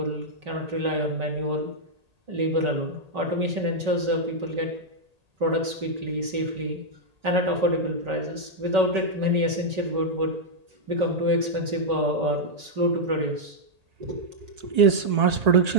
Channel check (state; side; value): late; left; 1.8 ms